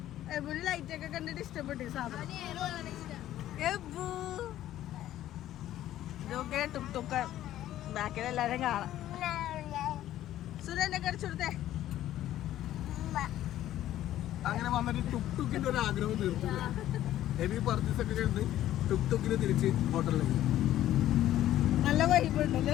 എബുൾ ലൈറ്റ് ഒക്കെ കണ്ടിട്ട് ഇഷ്ടപ്പെട്ടു സാധനം എബു ഇതൊക്കെ ടുക് ടുക്ക് ബാക്കിൽ എല്ലാരും കാണാം സുരേനെ കടിച്ചു കൊടുത്തേ അങ്ങനെ വന്നിട്ട് ടുക് ടുക്കിന്റെ ഒരു ആഗ്രഹം തീർത്തു ഹെവി പർച്ചേസ് ഒക്കെ കഴിഞ്ഞ് ടുക് ടുക്കിന് തിരിച്ച് ഹോട്ടലിലേക്ക്. നല്ല വൈബ് ഉണ്ട്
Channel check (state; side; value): quieter; right; 13.1 dB